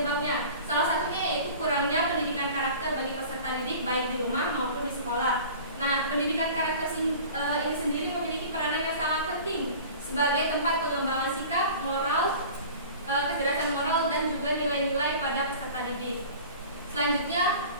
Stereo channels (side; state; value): both; inverted; correlation -0.41